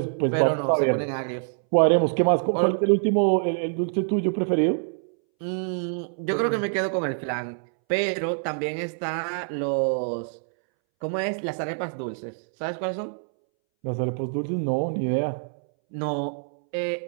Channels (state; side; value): silent; left; 61 dB below the other